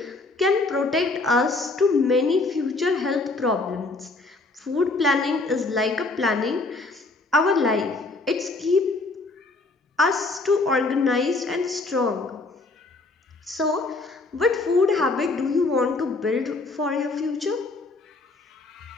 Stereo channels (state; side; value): quieter; right; 3.3 dB